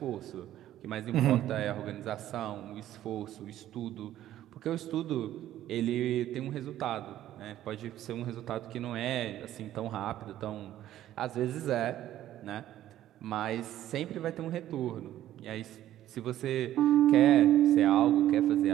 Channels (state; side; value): quieter; left; 12.8 dB